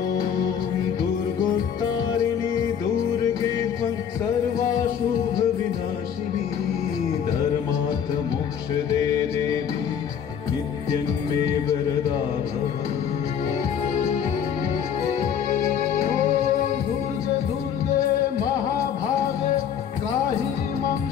दुर्गोत्तारिणी दुर्गे त्वं सर्वाशुभविनाशिनी धर्मार्थ मोक्षदे देवी नित्यं मे वरदा भव। दुर्गे दुर्गे महाभागे त्राहि मां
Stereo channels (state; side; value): quieter; right; 8.2 dB